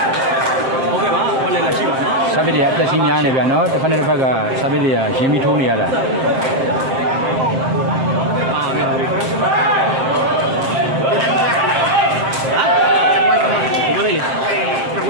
စာပေတွေအသက်ကြီးများနေဗျာနော်တစ်ဖက်နဲ့တစ်ဖက်ကစာပေတွေကရင်းပြီးထိုးနေရတာ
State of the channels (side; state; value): left; late; 7.6 ms